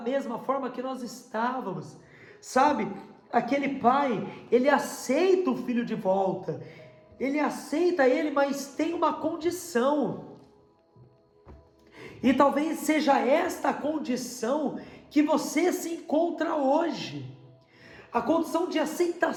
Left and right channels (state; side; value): identical; both; correlation 1.00